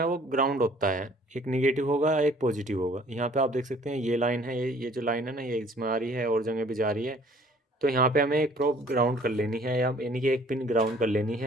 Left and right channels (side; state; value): both; normal; correlation 0.55